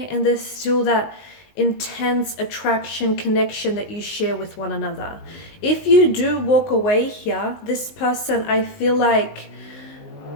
and there's still that intense attraction, connection that you share with one another. If you do walk away here, this person, I feel like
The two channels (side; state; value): right; late; 19 ms